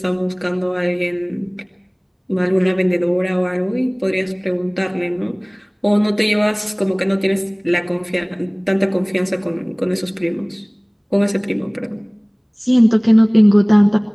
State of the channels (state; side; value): identical; both; correlation 1.00